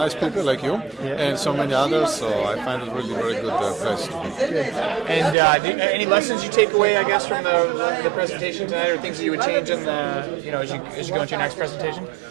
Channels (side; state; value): left; drops out; at 5.4 s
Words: people like you, and so many others. So I find it really very good place to be. And any lessons you take away, I guess, from the presentation tonight, or things that you would change in the, as you go into your next presentation?